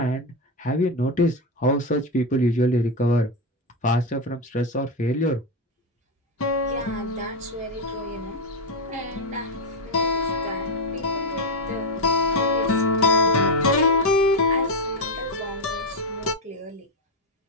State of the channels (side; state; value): both; normal; correlation 0.08